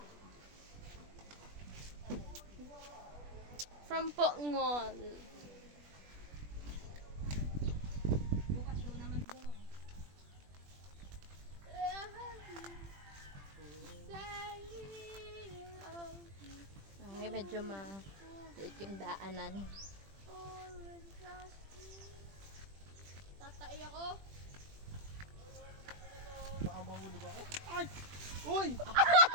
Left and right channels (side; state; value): left; late; 20 ms